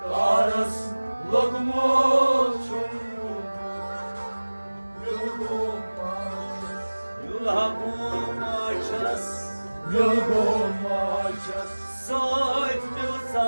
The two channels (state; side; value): inverted; both; correlation -1.00